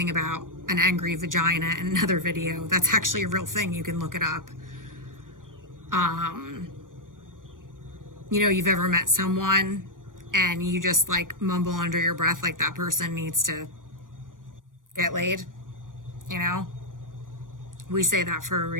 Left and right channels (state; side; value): late; left; 0.89 ms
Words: about an angry vagina in another video. That's actually a real thing. You can look it up. You've ever met someone and you just like mumble under your breath like that person needs to get laid, you know? We say that for a